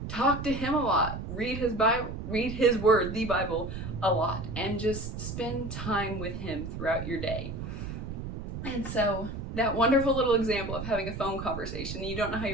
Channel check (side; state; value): right; noise; rumble, 7 dB below the sound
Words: talk to him a lot. Read his Bible, read his word, the Bible, a lot. And just spend time with him throughout your day. And so that wonderful little example of having a phone conversation, you don't know how